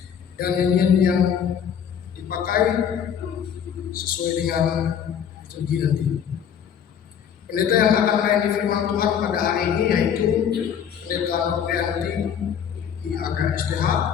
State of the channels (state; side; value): quieter; right; 8.3 dB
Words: dan nyanyian yang dipakai sesuai dengan liturgi nanti. Pendeta yang akan melayani firman Tuhan pada hari ini yaitu Pendeta Noprianti IAK STH,